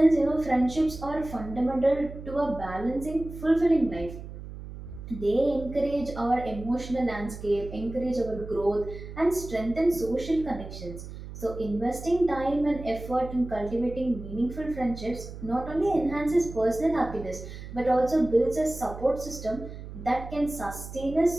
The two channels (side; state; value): right; noise; hum, 12 dB below the sound